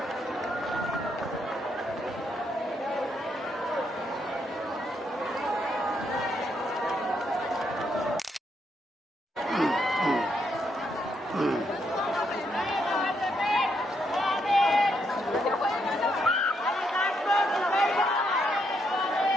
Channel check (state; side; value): normal; both; correlation 0.77